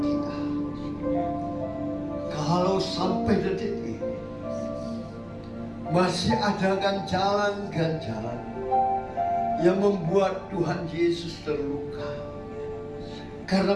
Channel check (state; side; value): identical; both; correlation 1.00